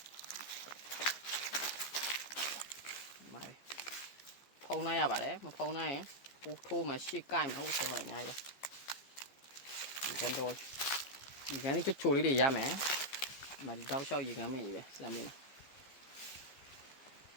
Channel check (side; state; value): right; late; 15 ms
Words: မိုင်းဖုံးနိုင်ရပါတယ်မဖုံးနိုင်ရင်ပူထိုးမှရှေ့ကိုက်မှဟုတ်တယ်ပါအများကြီးပါဒီကန်တော့ဒီကန်လေးချိုလေးတွေရမယ်မဒီတောက်လျှောက်ရေကန်မင်းကြီးပဲစမ်းမင်း